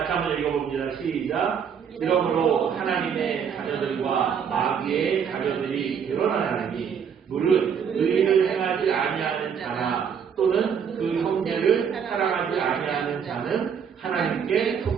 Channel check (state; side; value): quieter; left; 7.3 dB